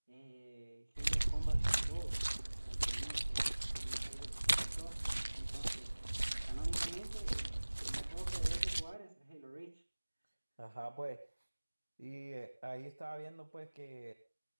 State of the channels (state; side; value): inverted; both; correlation -1.00